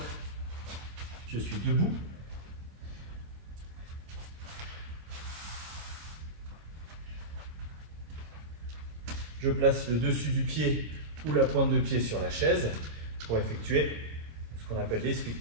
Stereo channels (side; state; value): left; late; 26 ms